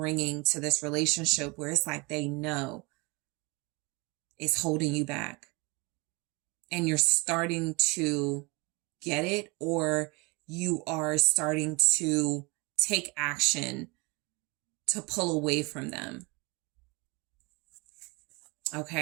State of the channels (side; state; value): left; quieter; 27.3 dB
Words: to this relationship where it's like they know it's holding you back. And you're starting to get it, or you are starting to take action to pull away from them.